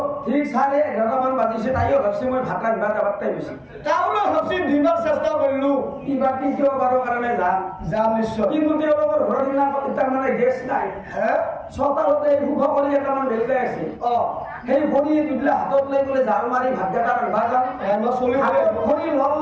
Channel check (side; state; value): both; identical; correlation 1.00